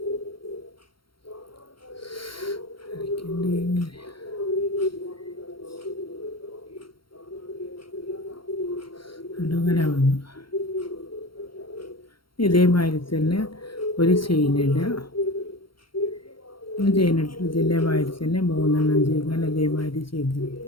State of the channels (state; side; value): late; right; 0.73 ms